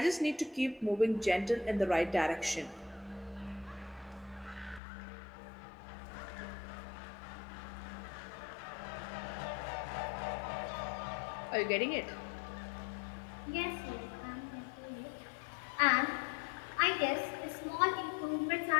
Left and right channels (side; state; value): right; drops out; at 4.8 s